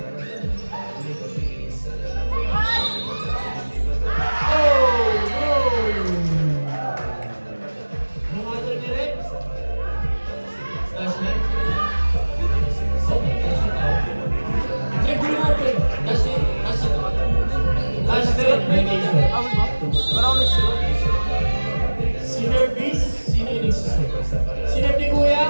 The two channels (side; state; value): both; inverted; correlation -1.00